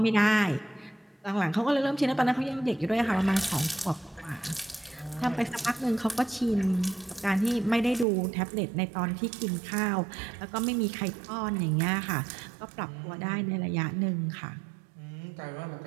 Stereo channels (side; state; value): left; drops out; at 8.1 s